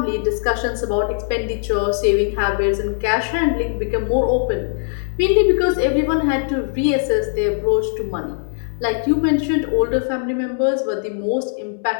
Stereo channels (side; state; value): right; silent; 66 dB below the other